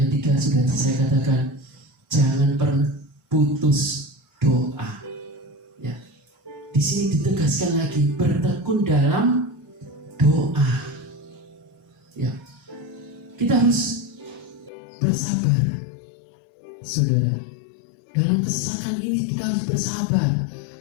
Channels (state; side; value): drops out; right; at 14.7 s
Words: ketiga sudah saya katakan, jangan pernah putus doa. Ya, di sini ditegaskan lagi, bertekun dalam doa. Ya, kita harus bersabar, saudara. Dalam kesesakan ini kita harus bersabar,